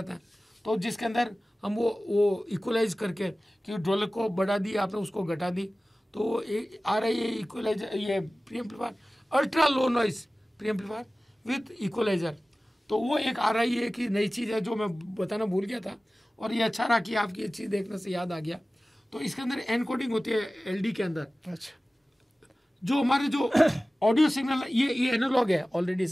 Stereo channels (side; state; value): both; normal; correlation 0.97